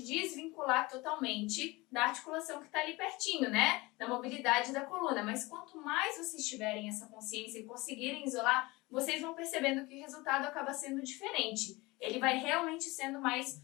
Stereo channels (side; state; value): right; quieter; 22.5 dB